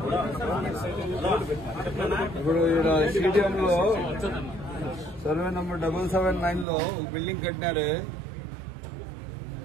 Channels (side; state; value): left; drops out; at 6.7 s